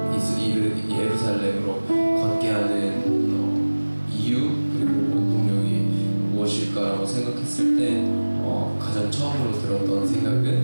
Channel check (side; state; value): both; inverted; correlation -1.00